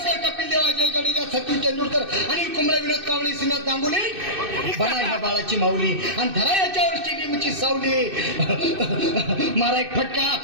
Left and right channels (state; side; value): late; left; 2.6 ms